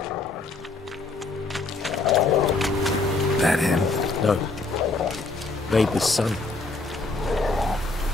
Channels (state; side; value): quieter; right; 3.5 dB